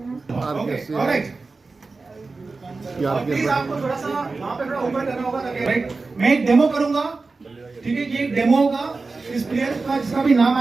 मैं एक डेमो करूंगा, ठीक है? ये डेमो होगा। इस प्लेयर का जिसका भी नाम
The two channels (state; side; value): quieter; left; 3.9 dB